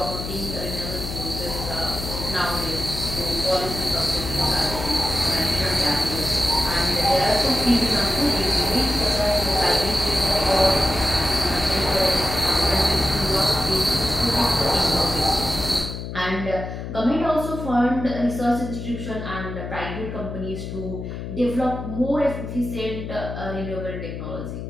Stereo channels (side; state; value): left; noise; hum, 7 dB below the sound